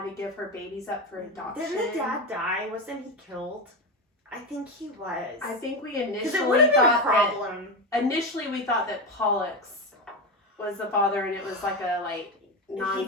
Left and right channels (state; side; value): normal; both; correlation 0.17